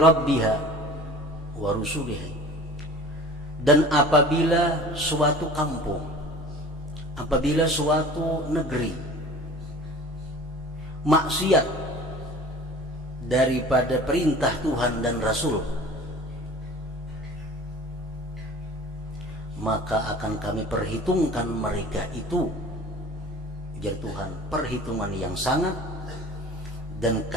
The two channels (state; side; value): normal; both; correlation 0.43